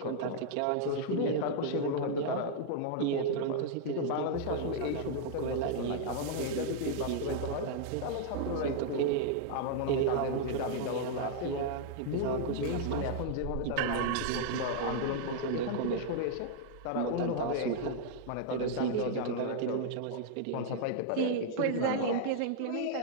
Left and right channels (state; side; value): different; both; correlation -0.01